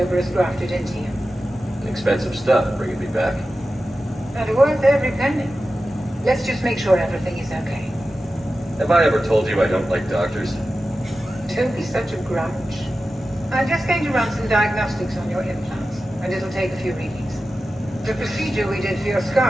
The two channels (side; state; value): both; normal; correlation 0.93